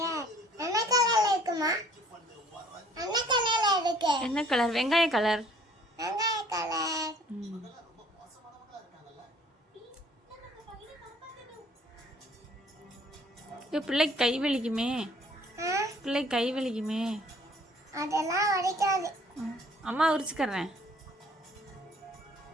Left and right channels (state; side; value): normal; both; correlation 0.57